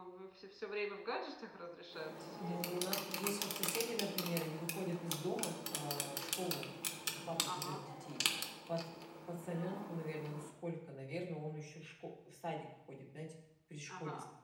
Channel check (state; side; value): identical; both; correlation 1.00